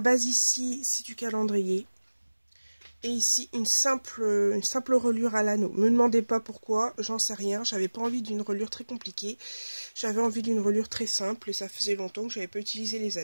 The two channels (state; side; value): inverted; both; correlation -1.00